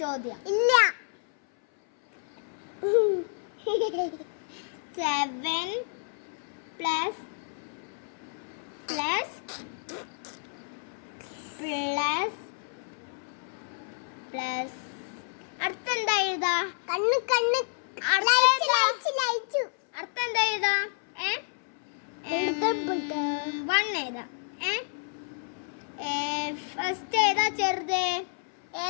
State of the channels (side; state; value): right; silent; 58 dB below the other